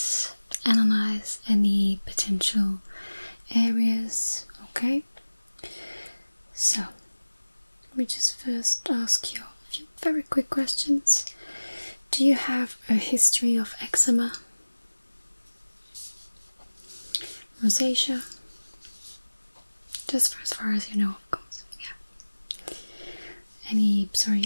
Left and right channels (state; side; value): inverted; both; correlation -1.00